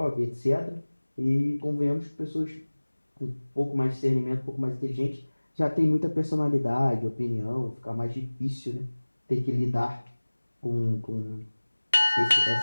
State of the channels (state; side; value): inverted; both; correlation -1.00